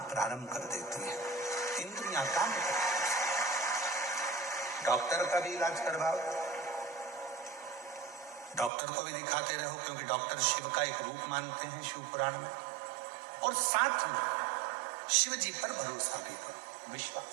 प्रारंभ कर देती है। इंद्रियां काम करती है। डॉक्टर का भी इलाज करवाओ, डॉक्टर को भी दिखाते रहो, क्योंकि डॉक्टर शिव का एक रूप मानते हैं शिव पुराण में। और साथ में शिव जी पर भरोसा भी करो,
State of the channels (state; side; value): drops out; left; at 8.7 s